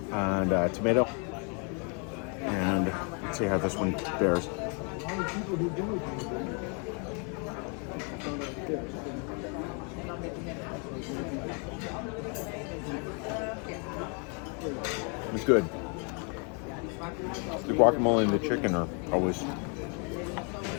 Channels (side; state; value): right; quieter; 36.7 dB